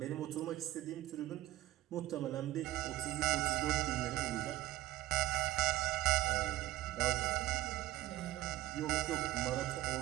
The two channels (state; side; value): quieter; left; 15.2 dB